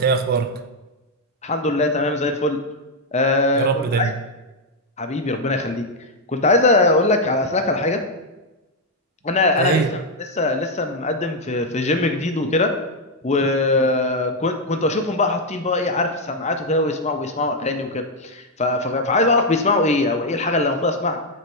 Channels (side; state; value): both; normal; correlation 0.01